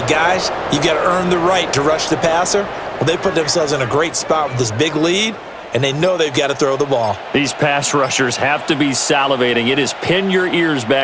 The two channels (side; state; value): both; identical; correlation 1.00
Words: guys, you got to earn the right to rush the passer. Well, they put themselves in a great spot with this big lead, and they know they've got to throw the ball. These pass rushers have to be salivating. It is pin your ears